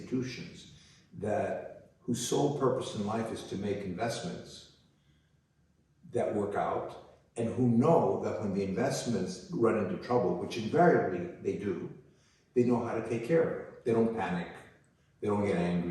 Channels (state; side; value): identical; both; correlation 1.00